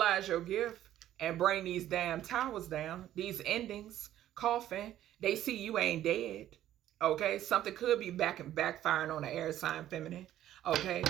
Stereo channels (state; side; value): quieter; left; 12.5 dB